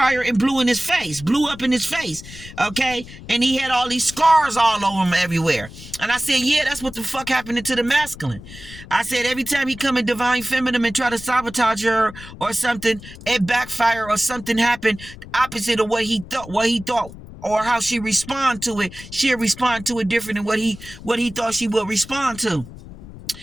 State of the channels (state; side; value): noise; left; rumble, 16 dB below the sound